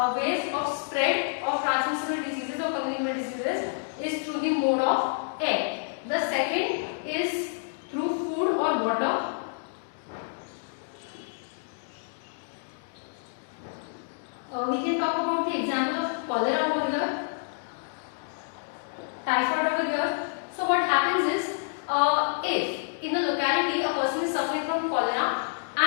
ways of spread of transmissible diseases or communicable diseases is through the mode of air. The second is through food or water. We can talk about the example of cholera over here, typhoid over here. So what happens is, if in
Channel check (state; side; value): silent; right; digital silence